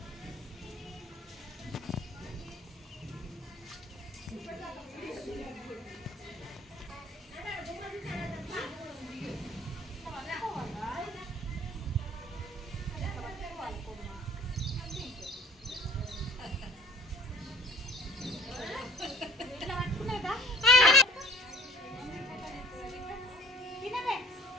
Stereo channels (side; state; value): both; normal; correlation 0.51